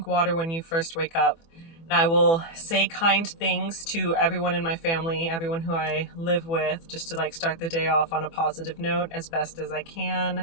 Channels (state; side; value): late; right; 24 ms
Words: water when you first wake up. And I will say kind things to everyone in my family, everyone who I live with, just to like start the day off on a positive note as best as I can.